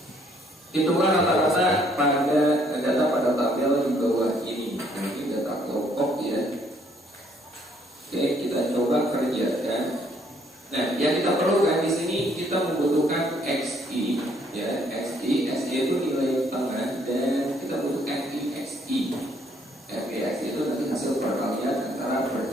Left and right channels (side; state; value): both; normal; correlation 0.66